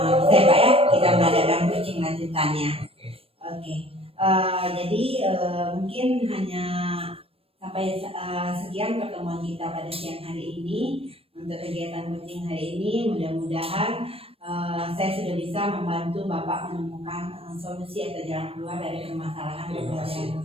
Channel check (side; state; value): left; late; 0.28 ms